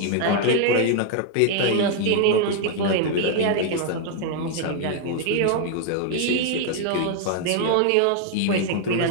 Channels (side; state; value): both; different; correlation 0.00